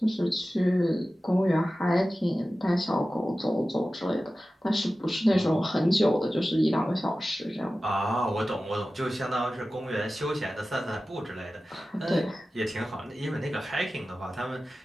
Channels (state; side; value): normal; both; correlation 0.95